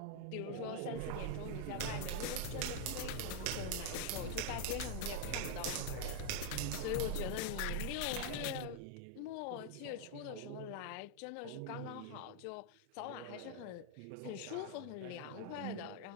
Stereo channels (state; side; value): different; both; correlation 0.00